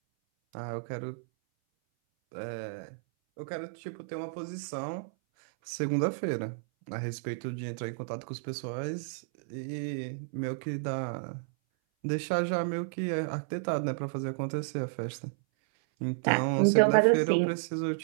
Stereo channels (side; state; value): left; silent; 57 dB below the other